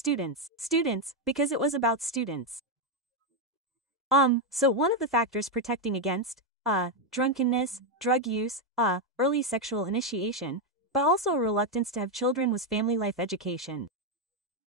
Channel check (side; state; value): both; normal; correlation 0.03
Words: Students, because it was about students. So one of the factors protecting against, drunkenness, drug use, early sexual initiation, but also a reluctance to have children was family life education.